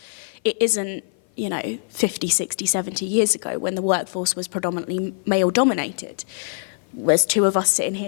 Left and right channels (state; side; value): silent; right; 55 dB below the other